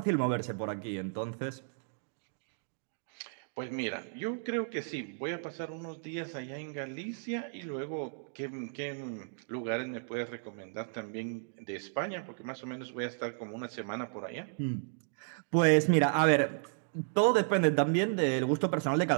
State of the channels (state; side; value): silent; left; digital silence